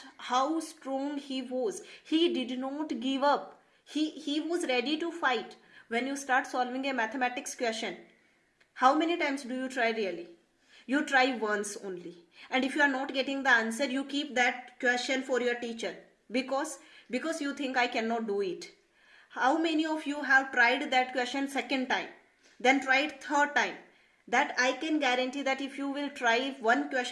how strong he was. He did not give up. He was ready to fight. When you start solving a mathematics question, how many times do you try really? You try once only. And if you are not getting the answer, you keep that question for your teacher because you think I cannot do it. How many of you have tried that question second time, then tried third time? That I can guarantee that if you will try one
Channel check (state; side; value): identical; both; correlation 1.00